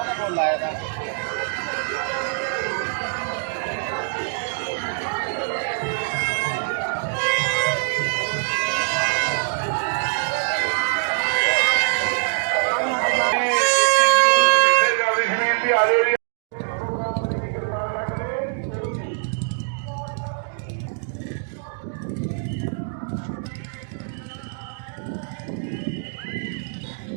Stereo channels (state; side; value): silent; left; digital silence